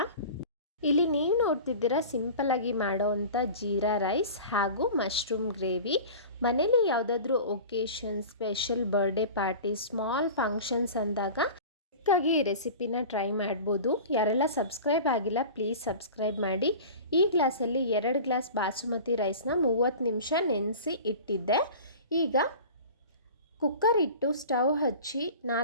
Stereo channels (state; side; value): inverted; both; correlation -0.37